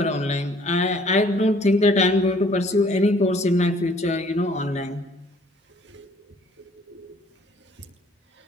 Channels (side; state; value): both; normal; correlation 0.58